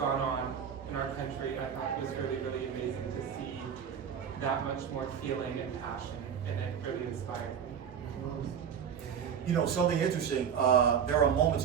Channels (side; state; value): left; quieter; 7.8 dB